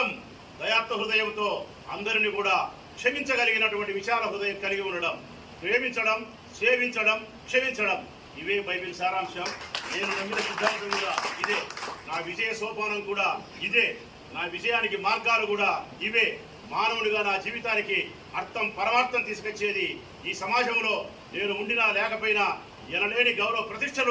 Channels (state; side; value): identical; both; correlation 1.00